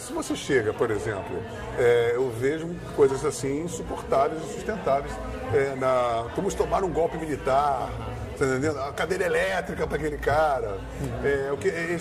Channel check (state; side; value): identical; both; correlation 1.00